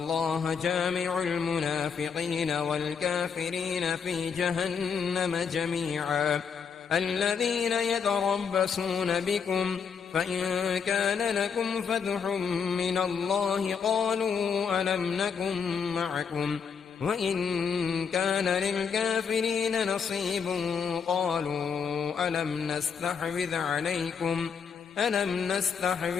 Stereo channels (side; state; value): right; quieter; 6.4 dB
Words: جامع المنافقين والكافرين في جهنم جميعا. الذين يتربصون بكم فإن كان لكم فتح من الله قالوا ألم نكن معكم وإن كان للكافرين نصيب قالوا ألم